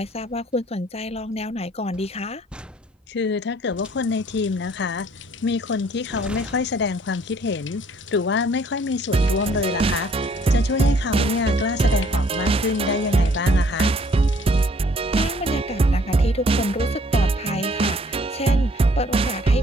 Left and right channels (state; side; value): normal; both; correlation 0.60